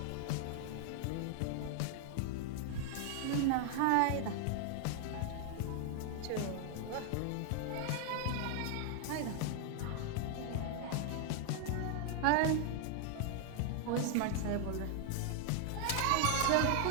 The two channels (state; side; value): different; both; correlation 0.00